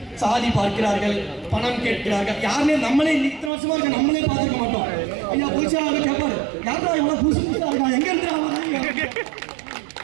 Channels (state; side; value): drops out; left; at 3.5 s